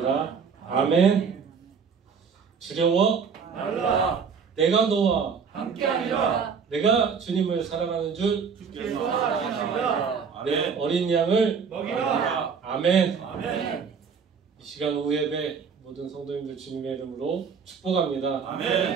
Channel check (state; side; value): quieter; left; 6.1 dB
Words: 아멘. 두려워 말라. 내가 너와 함께하리라. 내가 주님을 사랑하는 줄 주께서 사랑하시리라. 내 어린 양을 먹이라. 아멘. 아멘. 이 시간 후 예배 모든 성도님들 주님의 이름으로 축복합니다.